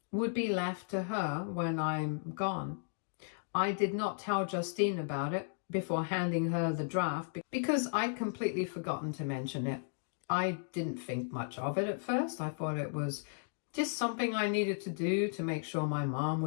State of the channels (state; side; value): silent; right; digital silence